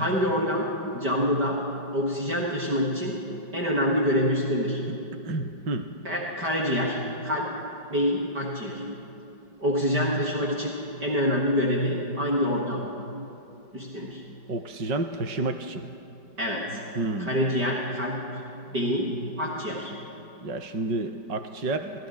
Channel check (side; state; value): left; late; 5.1 ms